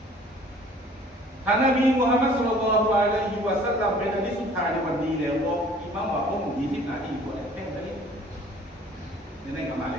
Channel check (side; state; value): both; normal; correlation 0.52